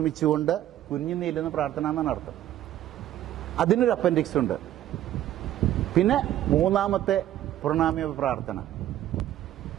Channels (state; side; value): quieter; left; 12.6 dB